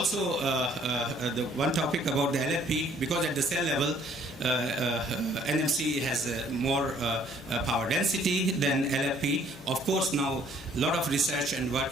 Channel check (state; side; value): normal; both; correlation 0.60